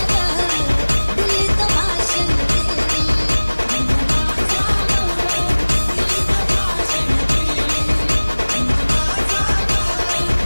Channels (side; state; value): both; inverted; correlation -1.00